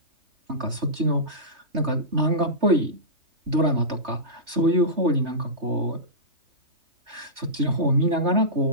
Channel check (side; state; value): left; late; 3.2 ms